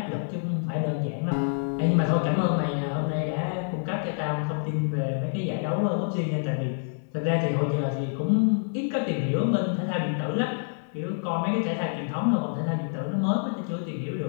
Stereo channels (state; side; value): silent; right; 60 dB below the other